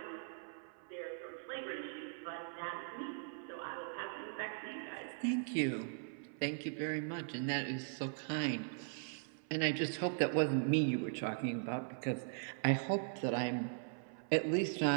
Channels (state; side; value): silent; left; 51 dB below the other